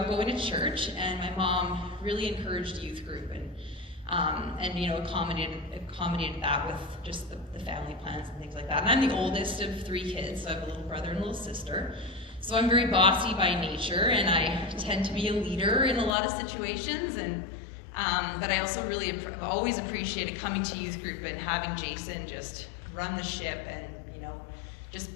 going to church, and my mom really encouraged youth group and you know, accommodated that with just the family plans and things like that. And I'm the oldest of 3 kids, so I have a little brother and a little sister. So I'm very bossy by nature, and I tend to be a leader in a lot of situations. And but I also really always appreciated coming to youth group and having Jason just run the ship and, you know,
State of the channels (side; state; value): right; drops out; at 16.1 s